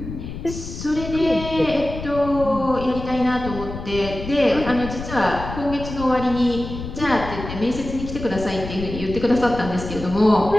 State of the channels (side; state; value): left; noise; rumble, 9 dB below the sound